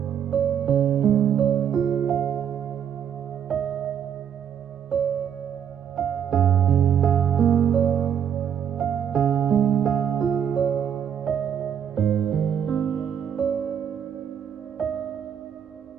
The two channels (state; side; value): quieter; left; 8.6 dB